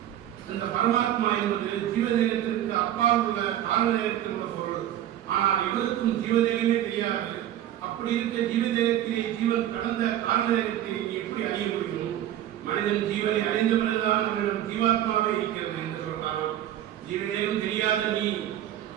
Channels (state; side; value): quieter; left; 11.9 dB